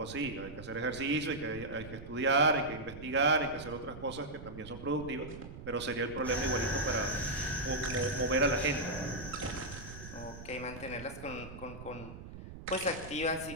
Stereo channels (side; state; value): right; noise; rumble, 12 dB below the sound